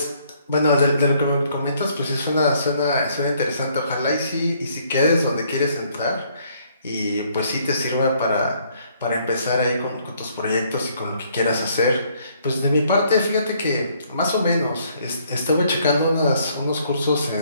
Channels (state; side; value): inverted; both; correlation -0.66